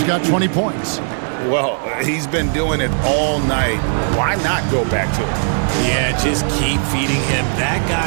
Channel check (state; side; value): silent; left; digital silence